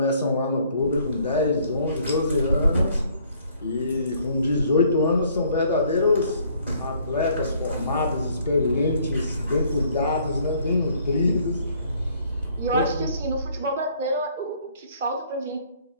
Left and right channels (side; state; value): both; inverted; correlation -0.62